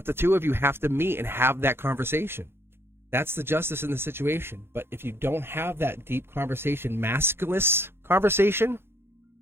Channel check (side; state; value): left; late; 0.11 ms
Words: the two of you have to meet and have that conversation. That's the justice in the situation. But if you don't have that deep conversation, maskless conversation,